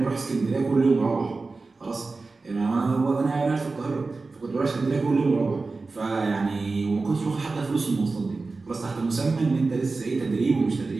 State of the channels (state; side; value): quieter; left; 3.8 dB